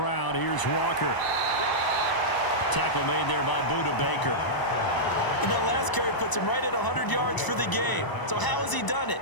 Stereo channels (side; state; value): right; late; 1.0 ms